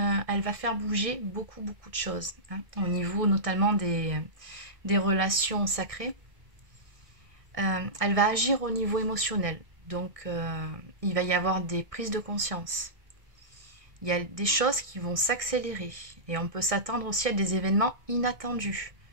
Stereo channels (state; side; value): late; left; 1.6 ms